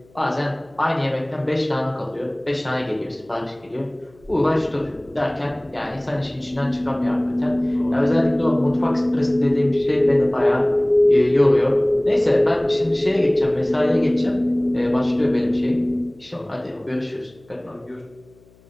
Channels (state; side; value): noise; left; hum, 29 dB below the sound